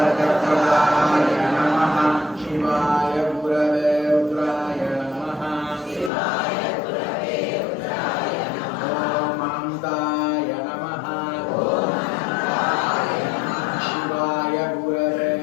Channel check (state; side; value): drops out; right; at 6.1 s